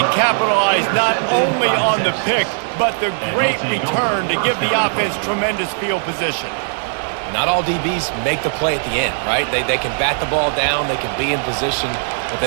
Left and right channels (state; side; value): silent; left; digital silence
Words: capitalize not only on the pick, but the great return to give the offense tremendous field position. Not all DBs make the play at the end, right? They can bat the ball down, they can be in position, but